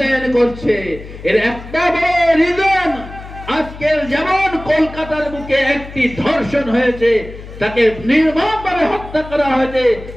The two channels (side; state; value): left; noise; hum, 14 dB below the sound